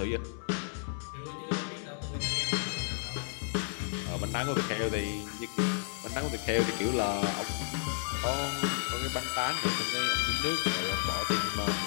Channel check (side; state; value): right; silent; digital silence